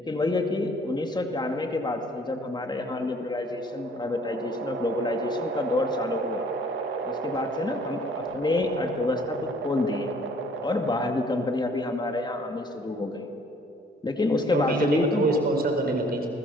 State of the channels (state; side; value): normal; both; correlation 0.57